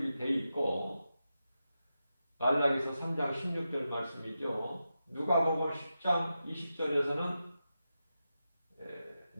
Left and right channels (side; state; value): both; inverted; correlation -0.90